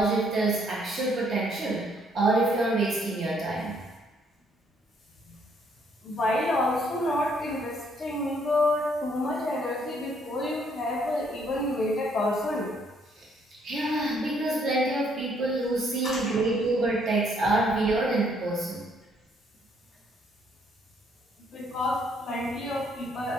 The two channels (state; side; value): normal; both; correlation 0.68